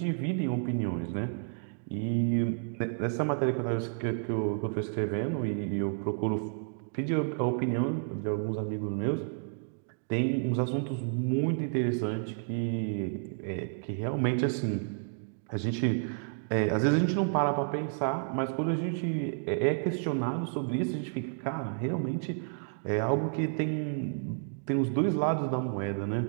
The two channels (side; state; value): left; silent; digital silence